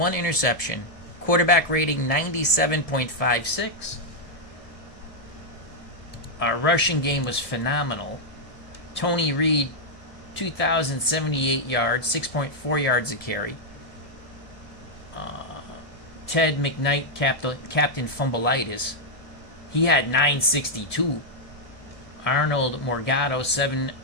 interception. Quarterback rating 97.56. Our rushing game was phenomenal. Tony Reed, 2,078 yards, 6.4 yards a carry. Ted McKnight, Captain Fumbleitis, he had 962. Arnold Morgado,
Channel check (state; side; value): late; right; 1.7 ms